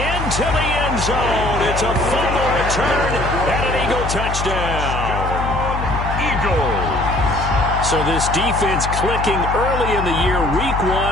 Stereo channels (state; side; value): noise; left; hum, 4 dB below the sound